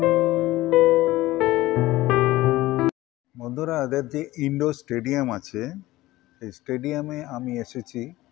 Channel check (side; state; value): right; quieter; 17.5 dB